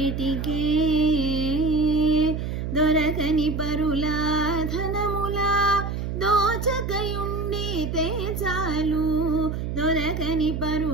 దొరకని పరుల ధనముల దోచకయుండితే చాలు దొరకని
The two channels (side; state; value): right; noise; hum, 4 dB below the sound